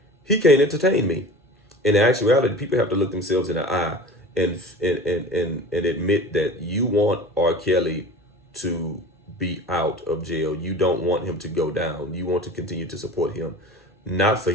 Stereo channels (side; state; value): both; normal; correlation 0.37